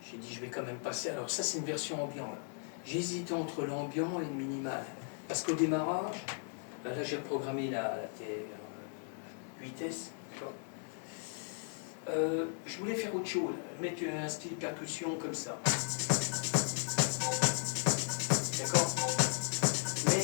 j'ai dit je vais quand même passer. Alors ça c'est une version ambiant là. J'hésitais entre l'ambiant et le minimal. Parce qu'au démarrage, là j'ai reprogrammé la TR-8S. Je voulais faire autre chose, mettre un style percussion comme ça. D'accord.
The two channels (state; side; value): silent; right; 54 dB below the other